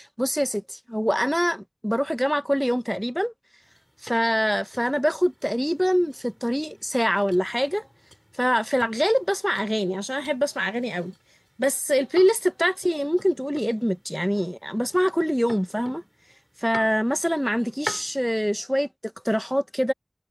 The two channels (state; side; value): identical; both; correlation 1.00